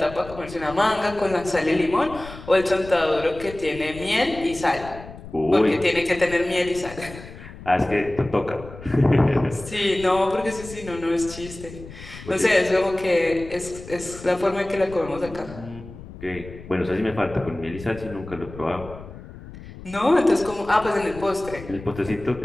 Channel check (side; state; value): left; noise; rumble, 15 dB below the sound